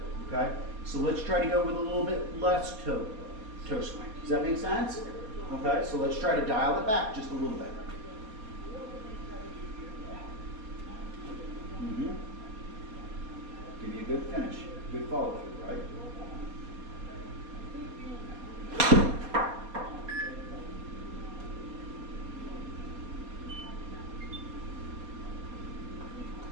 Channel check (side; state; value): left; late; 4.3 ms